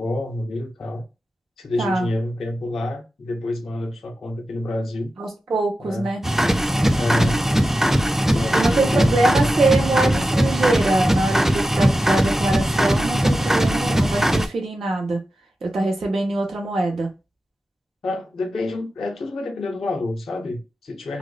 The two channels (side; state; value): both; normal; correlation 0.91